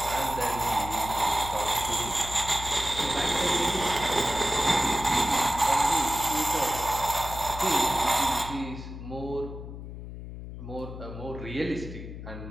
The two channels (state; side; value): noise; left; hum, 10 dB below the sound